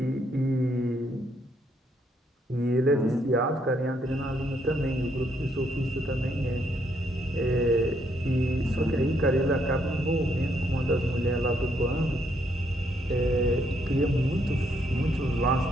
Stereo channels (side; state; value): both; normal; correlation 0.73